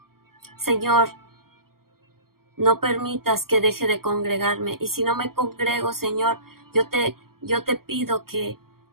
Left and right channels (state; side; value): late; left; 0.93 ms